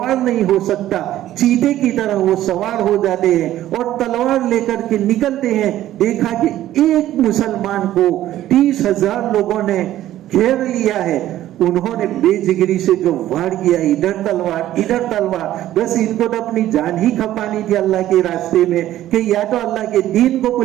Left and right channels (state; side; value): quieter; left; 13.4 dB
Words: नहीं हो सकता, चीते की तरह वो सवार हो जाते हैं और तलवार लेकर के निकलते हैं। देखा कि एक मुसलमान को 30,000 लोगों ने घेर लिया है। उन्होंने बेजिगरी से जो वार किया, इधर तलवार, बस इनको तो अपनी जान ही खपानी थी अल्लाह के रास्ते में कि या तो अल्लाह के दीन को